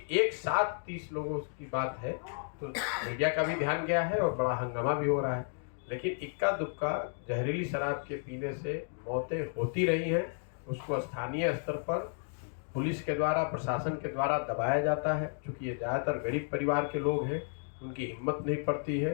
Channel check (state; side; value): silent; right; 56 dB below the other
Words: एक साथ 30 लोगों की बात है तो मीडिया का भी ध्यान गया है और बड़ा हंगामा भी हो रहा है, लेकिन इक्का दुक्का जहरीली शराब के पीने से मौतें होती रही हैं। उसको स्थानीय स्तर पर पुलिस के द्वारा, प्रशासन के द्वारा दबाया जाता है। चूँकि ये ज़्यादातर गरीब परिवार के लोग हैं, उनकी हिम्मत नहीं पड़ती